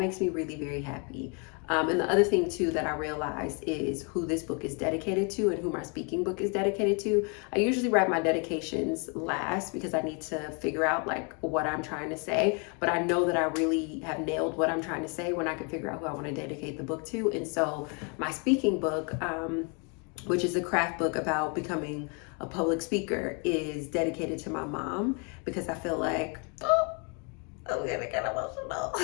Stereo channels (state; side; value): quieter; right; 35.3 dB